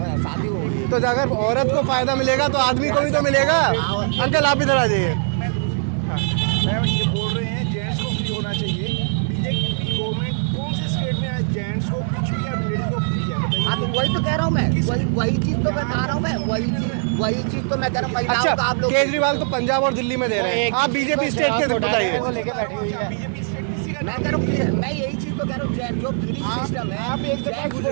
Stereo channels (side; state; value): left; silent; digital silence